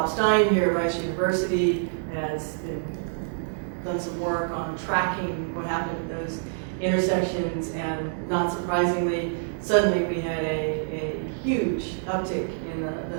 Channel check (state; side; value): silent; left; digital silence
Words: Stein here at Rice University has done some work on tracking what happened at those intersections, and not surprisingly, suddenly we had a huge uptick